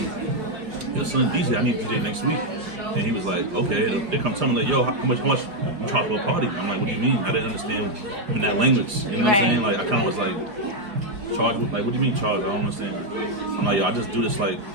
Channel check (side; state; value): left; late; 4.9 ms